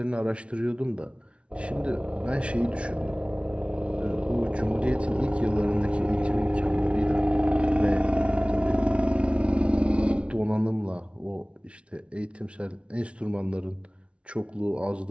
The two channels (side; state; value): left; late; 0.060 ms